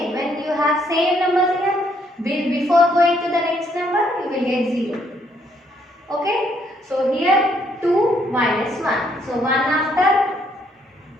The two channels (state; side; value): normal; both; correlation 0.70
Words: When you have same numbers here, before going to the next number, you will get 0. Okay. So here 2 minus 1. So 1 after